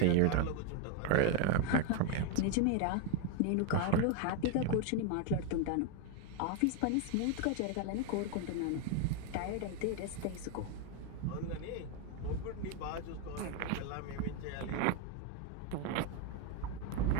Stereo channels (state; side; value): different; both; correlation 0.02